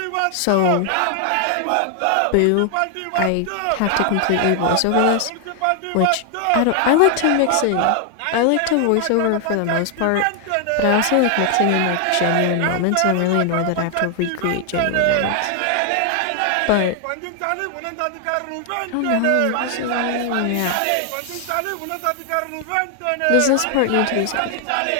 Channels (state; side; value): different; both; correlation 0.00